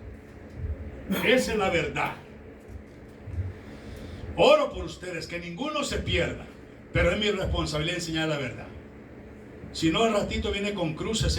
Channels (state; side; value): identical; both; correlation 1.00